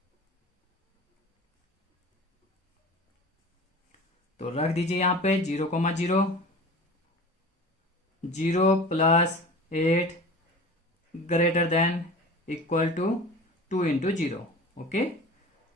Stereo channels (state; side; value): normal; both; correlation 0.38